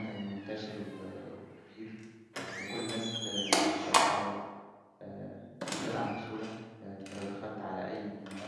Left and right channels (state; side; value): identical; both; correlation 1.00